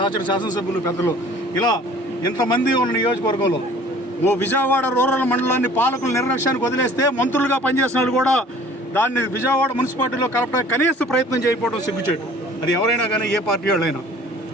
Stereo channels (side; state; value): both; normal; correlation 0.50